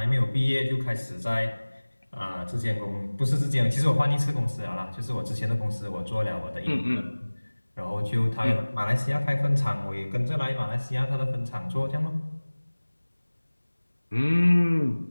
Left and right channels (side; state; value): both; inverted; correlation -1.00